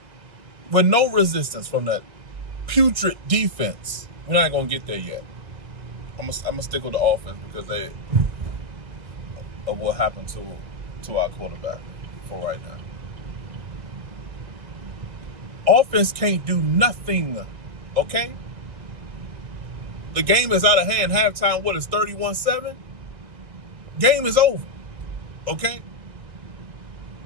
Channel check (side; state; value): left; late; 1.9 ms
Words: With no resistance from that putrid defense. We're not going to get there yet. I'm gonna stick with the offense because of what happened to our quarterback for right now. Offense can't do nothing, okay? The game is out of hand. Halftime, what is 31-7? Game is over, okay?